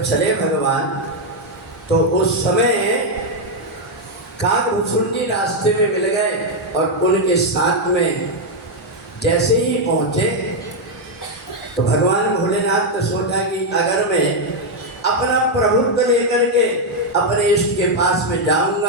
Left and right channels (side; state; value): both; normal; correlation 0.01